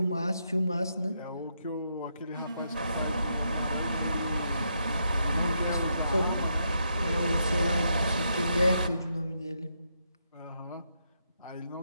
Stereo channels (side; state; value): both; inverted; correlation -0.80